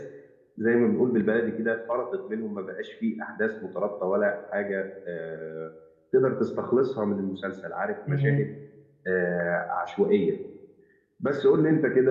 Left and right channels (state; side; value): identical; both; correlation 1.00